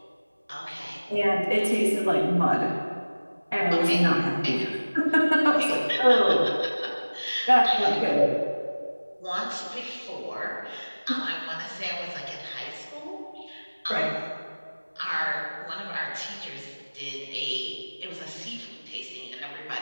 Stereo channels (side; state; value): both; inverted; correlation -1.00